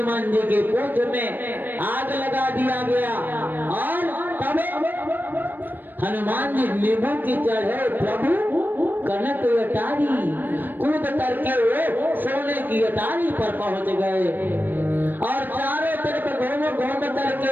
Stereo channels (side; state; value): left; late; 0.092 ms